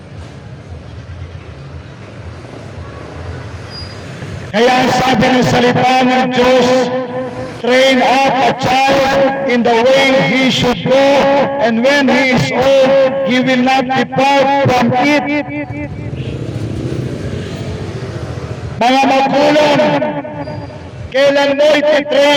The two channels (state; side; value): identical; both; correlation 1.00